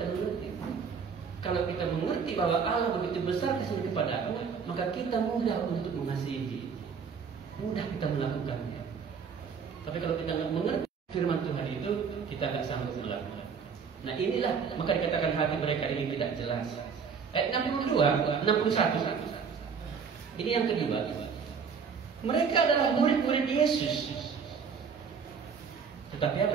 mengerti. Kalau kita mengerti bahwa Allah begitu besar kasihnya kepada kita, maka kita mudah untuk mengasihi, mudah kita melakukannya. Tapi kalau kita nggak mengerti firman Tuhan itu, kita nggak sanggup melakukan. Nah inilah maka dikatakan hati mereka ini tidak jelas. Ayat 61. Ini yang kedua. Mereka adalah murid-murid Yesus. Tetapi apa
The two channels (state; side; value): quieter; left; 6.1 dB